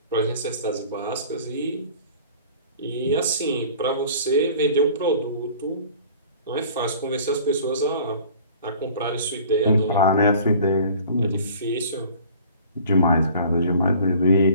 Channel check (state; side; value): inverted; both; correlation -0.48